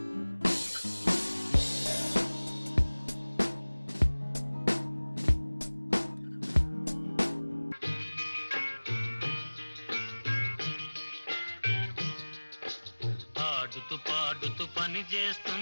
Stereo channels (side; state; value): both; inverted; correlation -1.00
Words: ఆడుతూ పాడుతూ పని